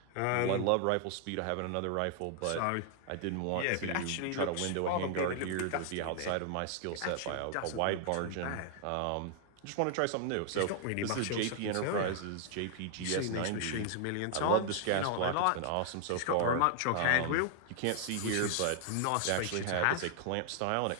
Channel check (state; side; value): different; both; correlation 0.00